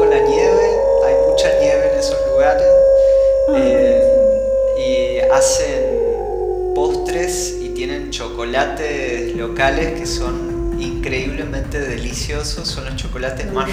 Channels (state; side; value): identical; both; correlation 1.00